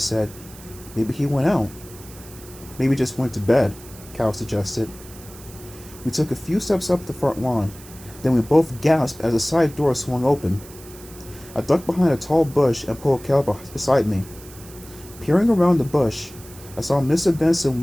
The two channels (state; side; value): noise; right; hiss, 19 dB below the sound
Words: Maybe he went out. Maybe just went to bed, Cal suggested. We took a few steps up the front lawn. Then we both gasped as a side door swung open. I ducked behind a tall bush and pulled Cal beside me. Peering around the bush, I saw Mr. Benson